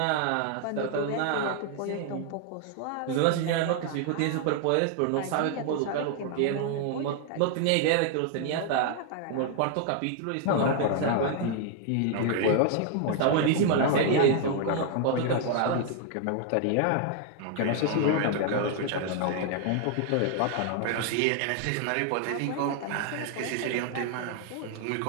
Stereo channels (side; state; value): both; different; correlation 0.00